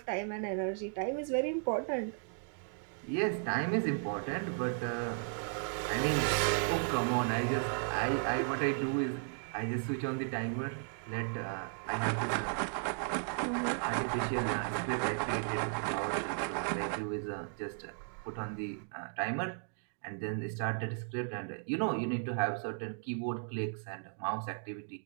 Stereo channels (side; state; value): left; silent; 54 dB below the other